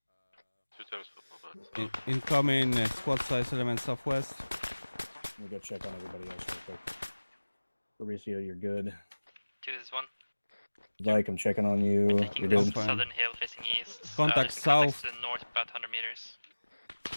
2 times football, but Incoming squad size element southwest. Let me go check on everybody else real quick. Fabricio, you're good. 2 is 1. Vyqe, I'm checking on you. Taking You're this good. southern hill facing east. Contact there's contacts south. to the north about 100 meters.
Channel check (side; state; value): both; inverted; correlation -1.00